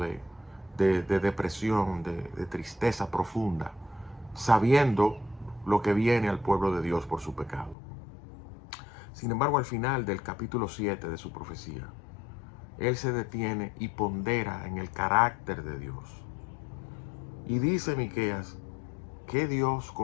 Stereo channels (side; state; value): right; drops out; at 7.8 s